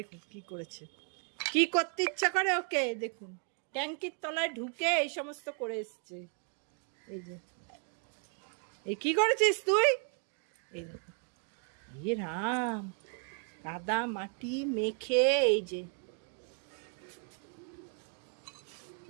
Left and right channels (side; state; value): left; quieter; 36.8 dB